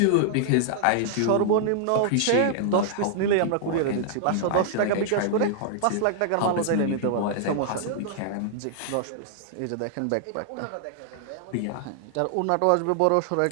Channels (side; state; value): both; different; correlation -0.01